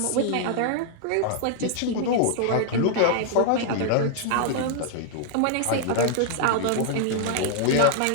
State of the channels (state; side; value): different; both; correlation -0.01